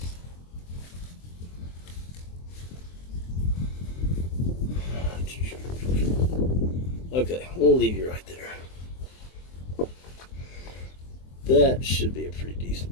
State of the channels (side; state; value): right; late; 23 ms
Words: Okay, we'll leave you right there. That should be a pretty